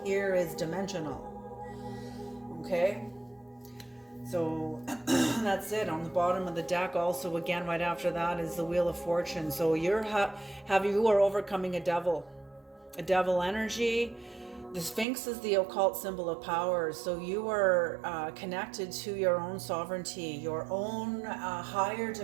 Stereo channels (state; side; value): drops out; left; at 15.1 s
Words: here is dimensional. Okay? So that's it. On the bottom of the deck also, again, right after that is the Wheel of Fortune. So you are overcoming a devil energy. The Sphinx is the occult symbol of power, so you are connected to your own sovereignty, your own higher